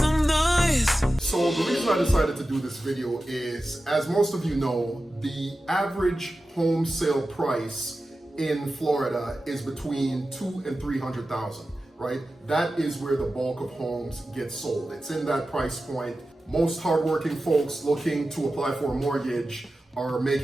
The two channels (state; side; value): normal; both; correlation 0.94